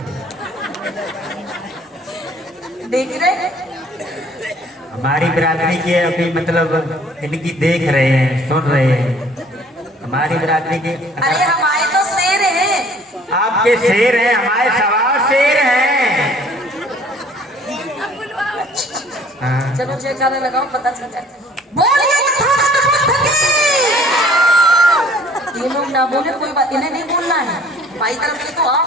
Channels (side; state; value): both; normal; correlation 0.54